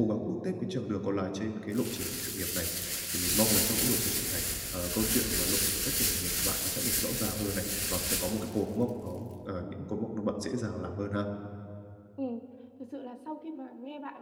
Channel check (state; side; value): identical; both; correlation 1.00